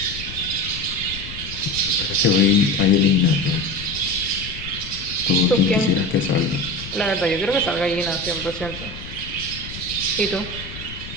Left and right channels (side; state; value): left; noise; rumble, 13 dB below the sound